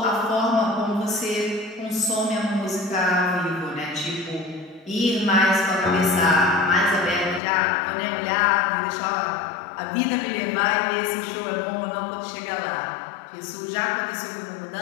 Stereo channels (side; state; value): right; drops out; at 7.4 s